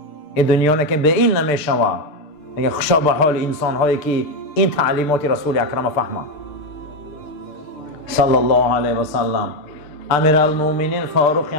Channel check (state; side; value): late; right; 6.7 ms